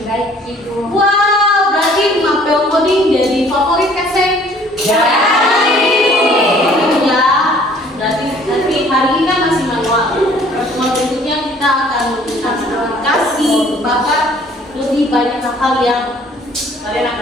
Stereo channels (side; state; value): both; normal; correlation 0.56